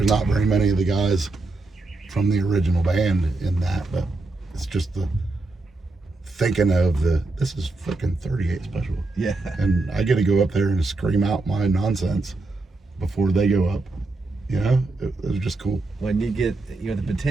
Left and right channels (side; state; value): left; quieter; 3.1 dB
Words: not very many of the guys from the original band in that, but it's just the thinking of this is freaking 38 Special. Yeah. And I get to go up there and scream out my nonsense before they go up. You know, it was just cool. When you get, the